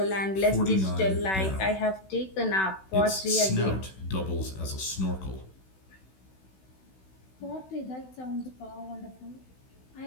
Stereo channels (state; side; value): late; right; 16 ms